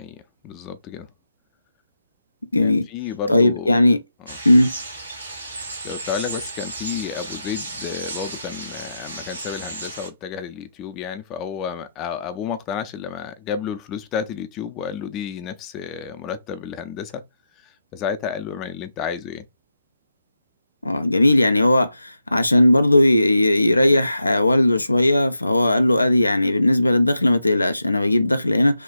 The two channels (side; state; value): both; inverted; correlation -0.86